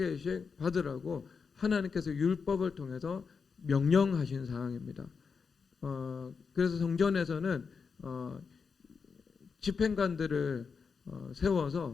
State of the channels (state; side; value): quieter; right; 5.5 dB